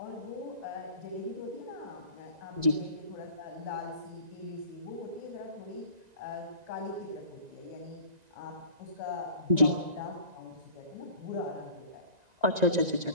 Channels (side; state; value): left; late; 1.9 ms